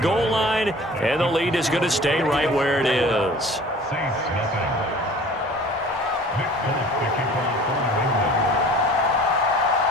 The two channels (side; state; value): both; normal; correlation 0.46